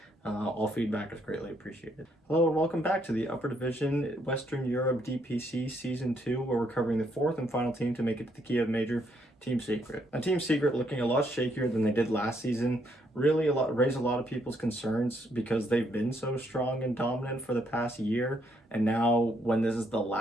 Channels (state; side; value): normal; both; correlation 0.72